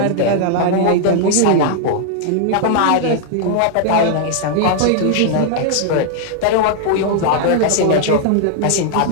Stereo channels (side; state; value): both; different; correlation 0.00